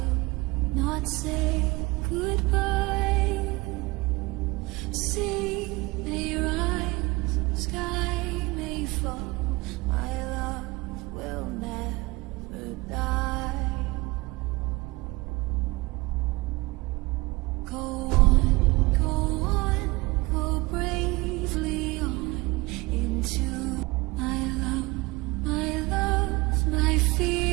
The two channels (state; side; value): quieter; left; 23.2 dB